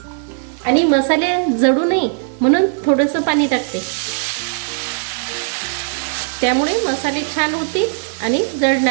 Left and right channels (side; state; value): left; silent; digital silence